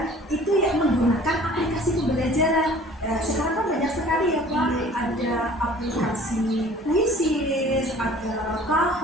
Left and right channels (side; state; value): both; normal; correlation 0.49